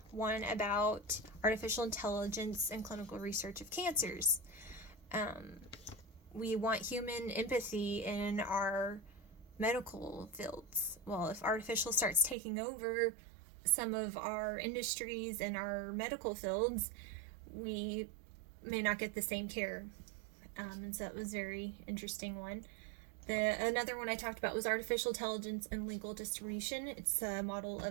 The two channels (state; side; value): drops out; left; at 12.4 s